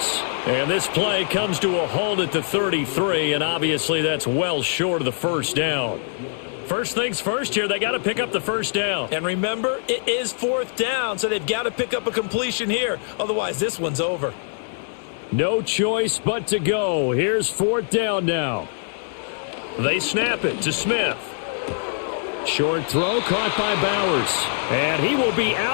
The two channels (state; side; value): silent; right; digital silence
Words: And this play comes to a halt at the 33, and obviously that's well short of the first down. First things first here, they got to pick up the first down. And remember, it is 4th down, so they've got to pick up a completion here. Otherwise, this one's over. No choice but to go. Here's 4th down now. They snap it to Smith. Short throw caught by Bowers. And he will be